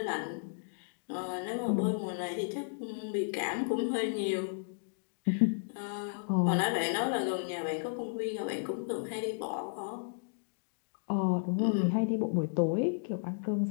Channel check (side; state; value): right; silent; digital silence